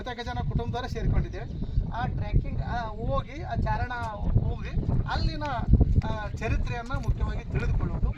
ಜನ ಕುಟುಂಬದವರೇ ಸೇರಿಕೊಂಡಿದ್ದೇವೆ. ಆ ಟ್ರೆಕ್ಕಿಂಗ್ ಹೋಗಿ ಆ ಚಾರಣ ಹೋಗಿ ಅಲ್ಲಿನ ಚರಿತ್ರೆಯನ್ನು ಮುಖ್ಯವಾಗಿ ತಿಳಿದುಕೊಳ್ಳೋದು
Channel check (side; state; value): both; identical; correlation 1.00